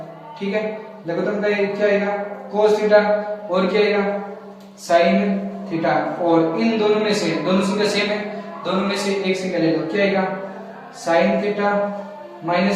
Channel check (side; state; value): both; identical; correlation 1.00